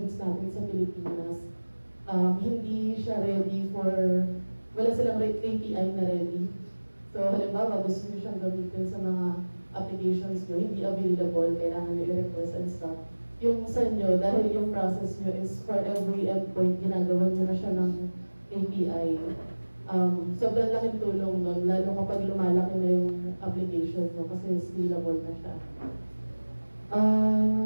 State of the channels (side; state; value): both; inverted; correlation -1.00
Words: natin sa Pilipinas, hindi siya ready for, wala silang API na ready. So halimbawa, gusto nyo siyang gamitin sa mga applications nyo, hindi available, kailangan nyo i-request and stuff. Yung sa inyo, dahil yung process nyo is for every endpoint, ginagawa nyo na siya ng API. Sobrang laking tulong nun, lalo kapag lumalaki na yung application mo kasi scalable na siya.